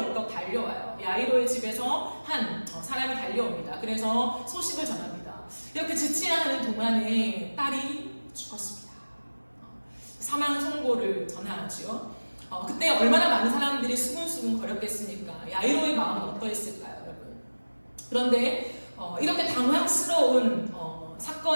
달려와요. 야이로의 집에서 한 사람이 달려옵니다. 그래서 소식을 전합니다. 이렇게 지체하는 동안에 딸이 죽었습니다. 사망 선고를 전하지요. 그때 얼마나 많은 사람들이 수군수군 거렸겠습니까? 야이로의 마음은 어떠했을까요, 여러분? 그런데 이렇게 당황스러운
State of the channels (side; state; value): both; inverted; correlation -1.00